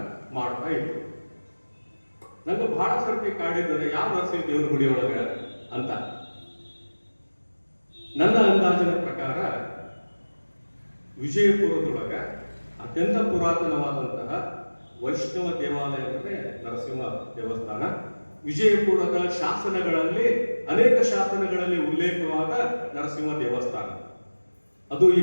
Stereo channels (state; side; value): inverted; both; correlation -1.00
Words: ಮಾಡ್ತಾ ಇದ್ರು. ನಂಗೆ ಬಹಳ ಸರ್ತಿ ಕಾಡಿದ್ದಾರೆ, ಯಾವ ನರಸಿಂಹ ದೇವರ ಗುಡಿ ಒಳಗ ಅಂತ. ನನ್ನ ಅಂದಾಜಿನ ಪ್ರಕಾರ ವಿಜಯಪುರದೊಳಗ ಅತ್ಯಂತ ಪುರಾತನವಾದಂತಹ ವೈಷ್ಣವ ದೇವಾಲಯ ಅಂದ್ರೆ ನರಸಿಂಹ ದೇವಸ್ಥಾನ. ವಿಜಯಪುರದ ಶಾಸನಗಳಲ್ಲಿ, ಅನೇಕ ಶಾಸನಗಳಲ್ಲಿ ಉಲ್ಲೇಖವಾದ ನರಸಿಂಹ ದೇವಸ್ಥಾನ. ಅದು